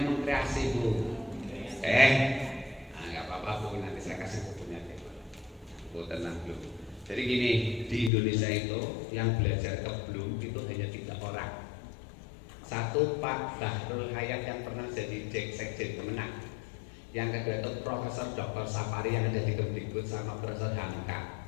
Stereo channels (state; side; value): drops out; right; at 8.1 s